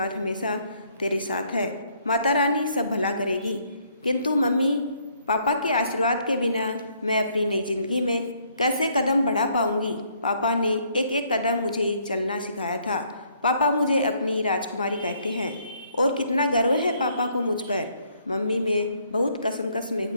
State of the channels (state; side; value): inverted; both; correlation -0.68